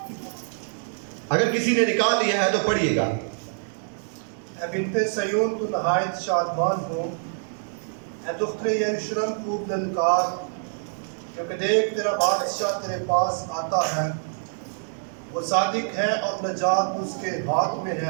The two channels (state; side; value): silent; left; digital silence